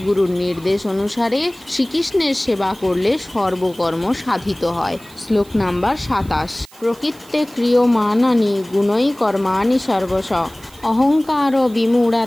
নির্দেশ অনুসারে শ্রীকৃষ্ণের সেবা করলে সর্বকর্ম সাধিত হয়। শ্লোক নাম্বার 27। প্রকৃত্যে ক্রিয়মাণানি গুণৈ কর্মাণি সর্বশ অহংকার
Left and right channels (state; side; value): noise; right; hiss, 24 dB below the sound